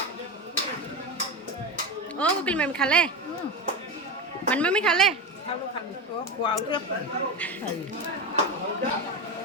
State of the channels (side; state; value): both; normal; correlation 0.18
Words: অ' কুকিল মামী খালে? মামী খালে?